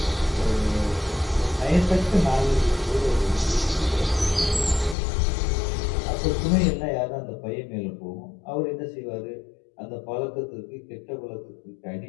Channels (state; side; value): drops out; right; at 5.0 s